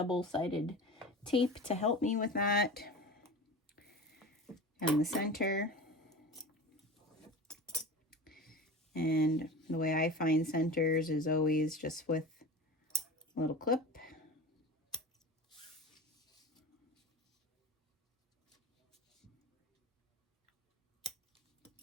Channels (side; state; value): both; normal; correlation 0.33